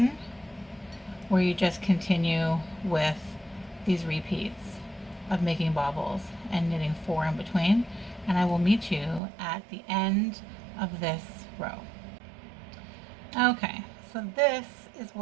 where you just continue with these repeats of making bobbles and knitting 4 in between. and I will meet you at the end of this row. Okay, so this is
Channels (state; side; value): drops out; left; at 9.2 s